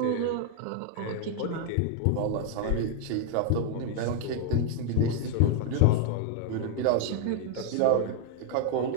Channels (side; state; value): both; different; correlation 0.00